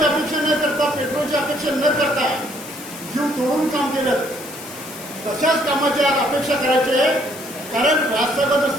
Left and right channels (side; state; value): left; noise; hiss, 14 dB below the sound